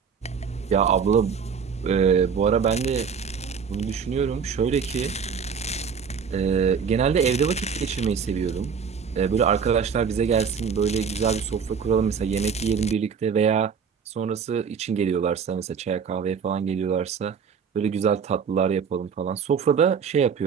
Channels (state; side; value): quieter; left; 6.5 dB